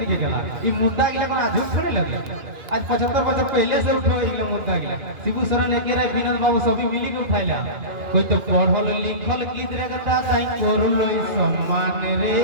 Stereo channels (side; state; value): left; late; 2.5 ms